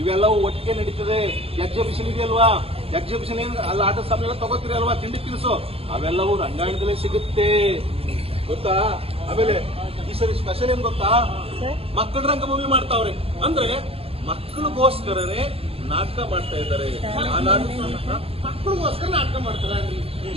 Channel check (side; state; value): left; late; 0.28 ms